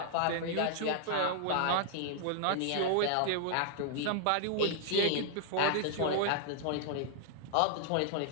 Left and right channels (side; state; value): both; different; correlation 0.00